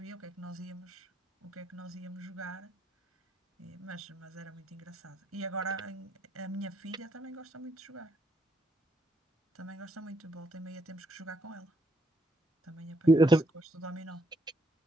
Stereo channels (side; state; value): both; normal; correlation 0.75